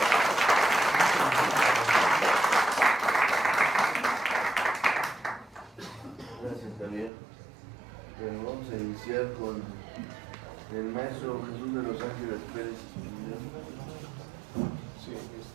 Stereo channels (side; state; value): left; drops out; at 7.1 s